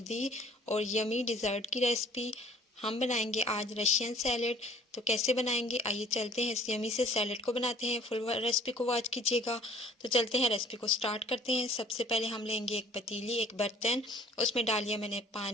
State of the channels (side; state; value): both; normal; correlation 0.53